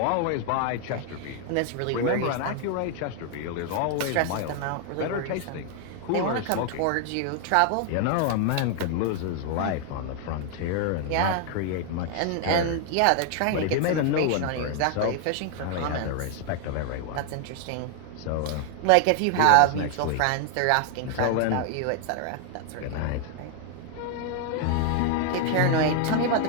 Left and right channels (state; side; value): different; both; correlation 0.00